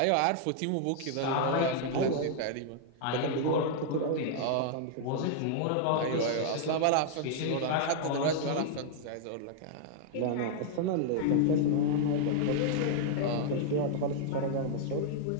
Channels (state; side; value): different; both; correlation -0.01